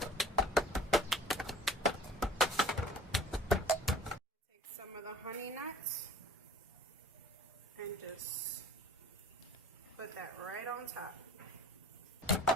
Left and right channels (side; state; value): both; normal; correlation 0.45